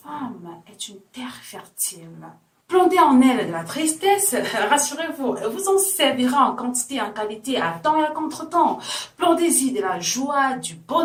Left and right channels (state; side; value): identical; both; correlation 1.00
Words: est une terre fertile. Plantez en elle de la tristesse, rassurez-vous, elle vous en servira en quantité et en qualité, à temps et à contre-temps. Plantez-y de la joie, du